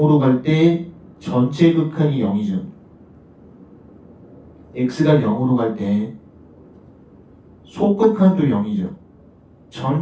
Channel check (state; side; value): identical; both; correlation 1.00